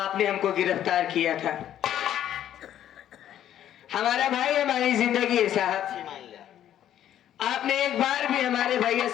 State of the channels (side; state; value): right; quieter; 11.1 dB